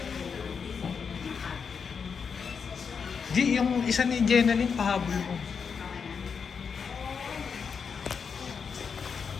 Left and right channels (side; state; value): right; quieter; 6.1 dB